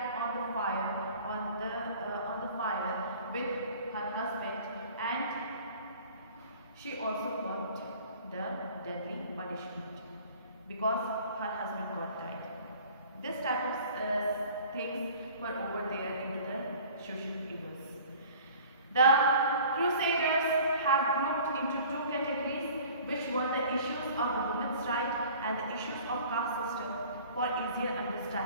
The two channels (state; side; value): inverted; both; correlation -0.47